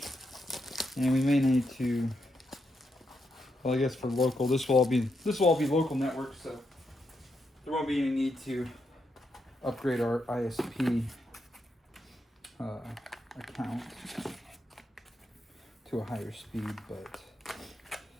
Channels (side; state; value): both; normal; correlation 0.82